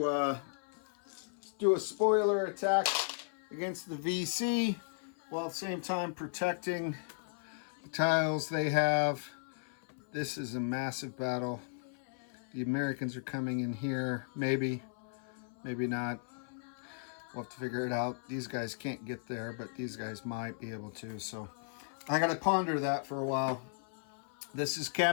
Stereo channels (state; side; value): silent; right; 54 dB below the other